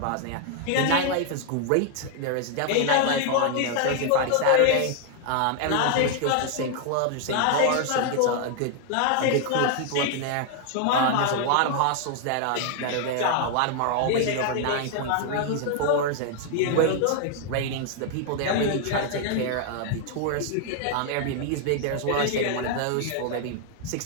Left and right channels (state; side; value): different; both; correlation 0.00